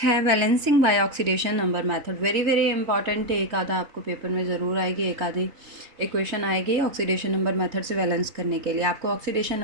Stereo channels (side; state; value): left; late; 3.3 ms